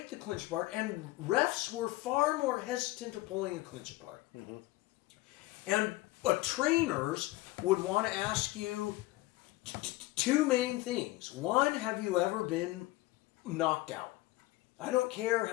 the clinch apart, and refs were far more hesitant of pulling a clinch apart. Mm-hmm. And trainers would want to ask you two main things. One, have you ever been knocked out? I don't care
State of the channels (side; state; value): right; quieter; 18.9 dB